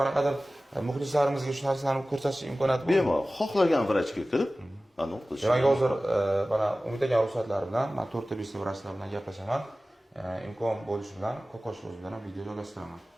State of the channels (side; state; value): both; normal; correlation 0.97